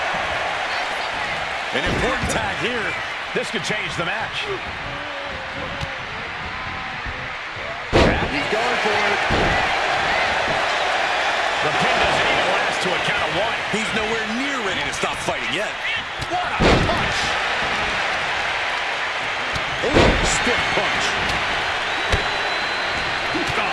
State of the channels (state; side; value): identical; both; correlation 1.00